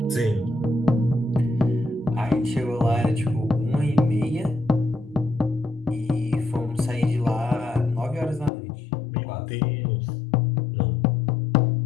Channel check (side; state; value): right; drops out; at 8.5 s